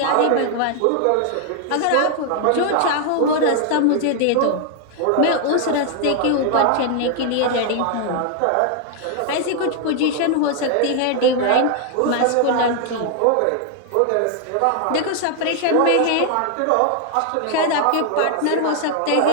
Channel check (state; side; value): different; both; correlation 0.00